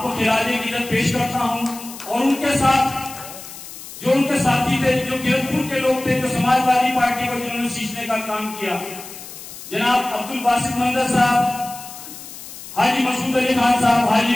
खिराजे की इज्जत पेश करता हूं और उनके साथ जो उनके साथी थे, जो किरतपुर के लोग थे, जो समाजवादी पार्टी को जिन्होंने सींचने का काम किया, जनाब अब्दुल बासित मंदर साहब, हाजी मसूद अली खान साहब, हाजी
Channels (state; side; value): noise; left; hiss, 14 dB below the sound